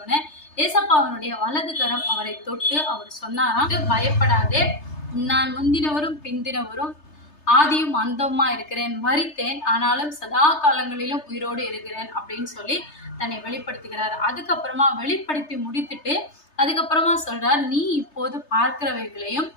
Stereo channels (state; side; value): late; right; 3.3 ms